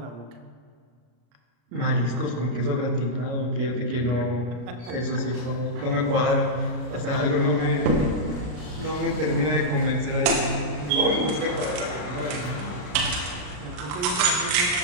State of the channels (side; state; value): left; late; 33 ms